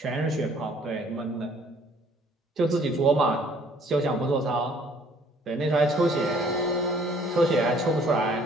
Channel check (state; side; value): normal; both; correlation 0.59